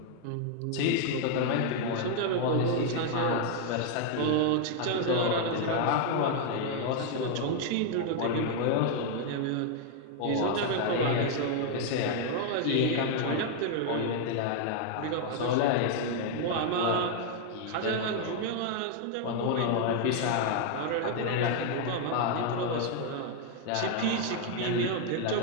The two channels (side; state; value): both; different; correlation 0.00